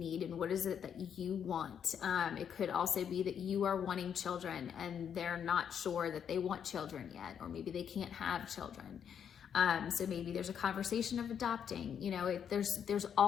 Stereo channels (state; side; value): quieter; right; 8.2 dB